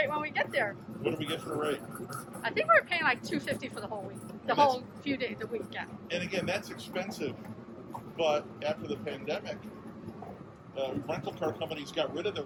when we get there. What do we get for a rate? I think we're paying like $250 for the whole week, the whole few days, the week. Yeah. And again, that's expensive. But after the pandemic, rental car companies got rid of their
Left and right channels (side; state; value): both; identical; correlation 1.00